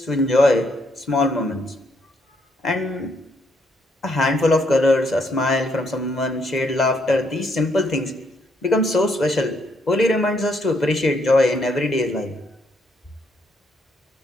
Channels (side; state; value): both; normal; correlation 0.73